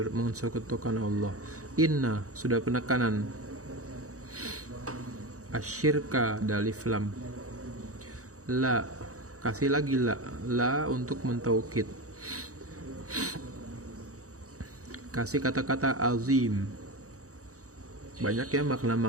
mensekutukan Allah. Inna sudah penekanan, asyirka dalif lam. La kasih lagi la untuk mentaukid. Kasih kata-kata azim. Banyak ya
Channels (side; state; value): left; late; 0.65 ms